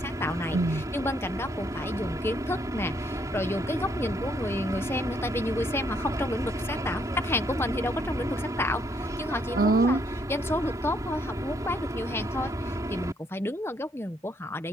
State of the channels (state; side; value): normal; both; correlation 0.71